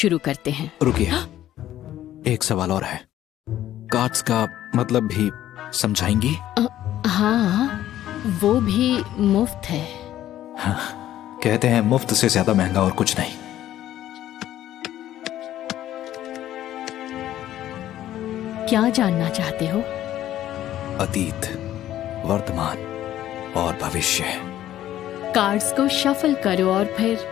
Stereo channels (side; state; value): right; quieter; 12.7 dB